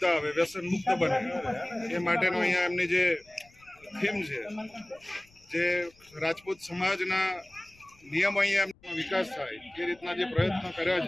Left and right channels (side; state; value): left; noise; rumble, 29 dB below the sound